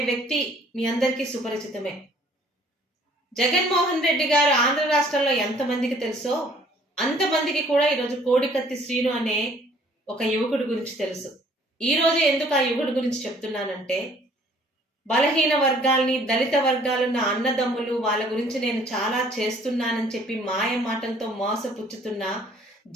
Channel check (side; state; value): both; normal; correlation 0.57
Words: వ్యక్తి మీ అందరికీ సుపరిచితమే. జగన్మోహన్ రెడ్డి గారు ఆంధ్ర రాష్ట్రంలో ఎంతమందికి తెలుసో అంతమందికి కూడా ఈరోజు కోడికత్తి శ్రీను అనే ఒక యువకుడి గురించి తెలుసు. ఈ రోజు ఎందుకు ఆ యువకుడి గురించి చెప్తున్నానంటే, బలహీన వర్గాల్ని, దళిత వర్గాలున్న అన్నదమ్ములు, వాళ్ళ గురించి నేను చాలా చేస్తున్నానని చెప్పి మాయ మాటలతో మోసపుచ్చుతున్న